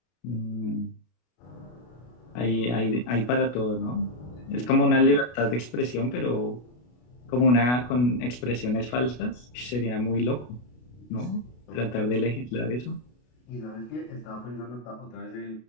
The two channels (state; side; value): late; right; 33 ms